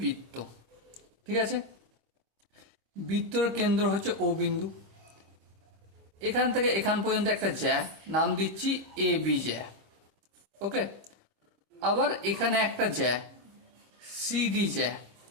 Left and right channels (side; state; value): left; late; 25 ms